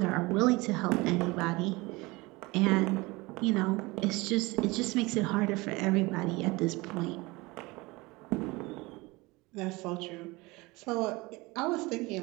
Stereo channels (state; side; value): quieter; left; 23.0 dB